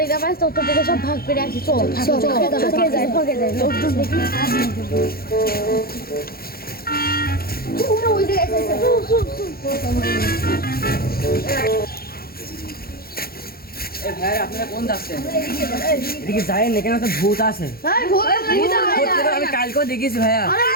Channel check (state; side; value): late; right; 0.44 ms